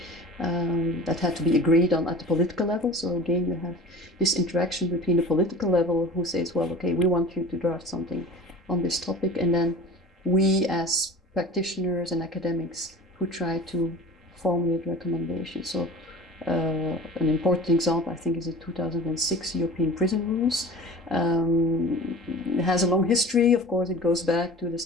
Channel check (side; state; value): both; normal; correlation 0.39